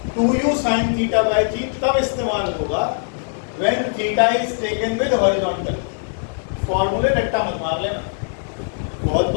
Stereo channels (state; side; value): silent; right; 65 dB below the other